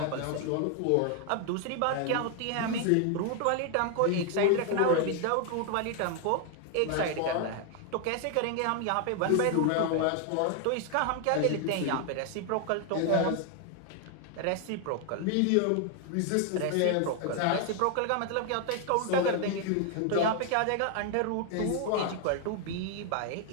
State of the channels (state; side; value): different; both; correlation 0.00